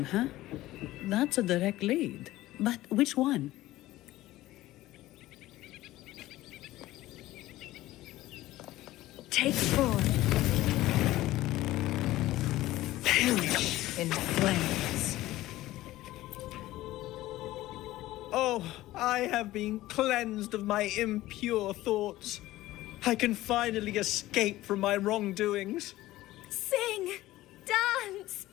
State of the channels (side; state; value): right; quieter; 16.3 dB